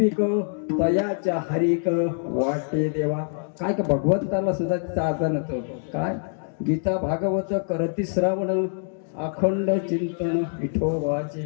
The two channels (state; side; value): silent; right; 62 dB below the other